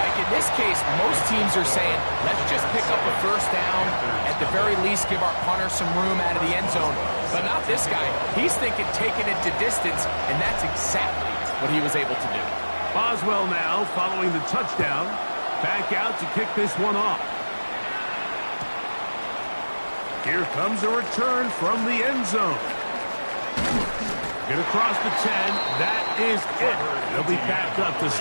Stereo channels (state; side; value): inverted; both; correlation -1.00